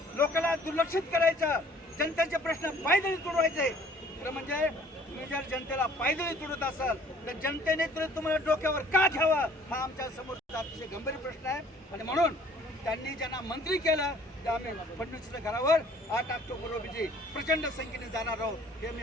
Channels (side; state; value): both; normal; correlation 0.55